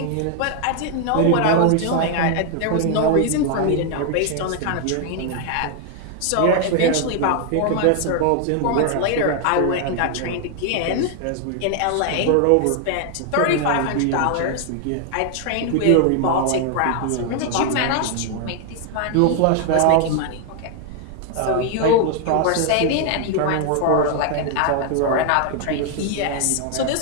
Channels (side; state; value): both; different; correlation 0.00